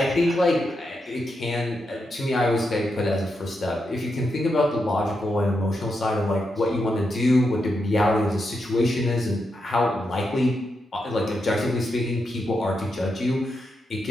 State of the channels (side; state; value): both; normal; correlation 0.84